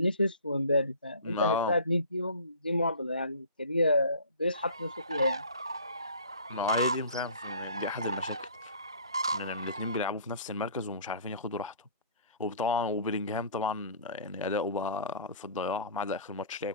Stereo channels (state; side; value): inverted; both; correlation -0.46